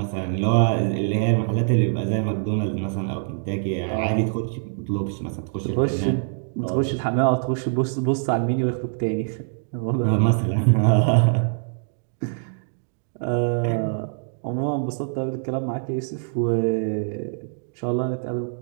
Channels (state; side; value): silent; left; digital silence